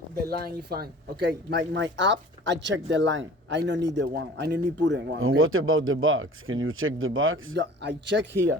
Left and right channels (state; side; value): normal; both; correlation 0.45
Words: the line, is fine. Okay, my app, I check the line. I don't need the one. I don't need put in one. And Okay? what about the box? Can you check the box? Yeah, I check